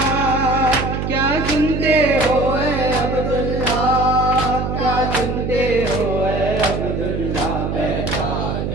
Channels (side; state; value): right; noise; hum, 2 dB below the sound